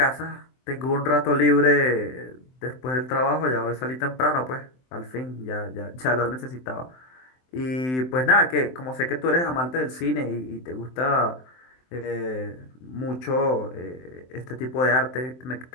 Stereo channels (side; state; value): right; late; 23 ms